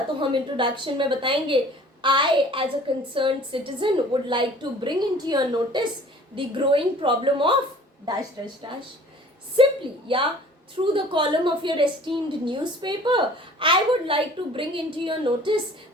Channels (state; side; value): normal; both; correlation 0.49